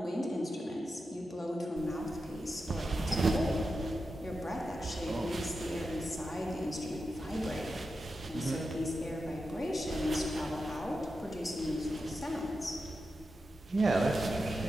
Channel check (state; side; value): normal; both; correlation 0.89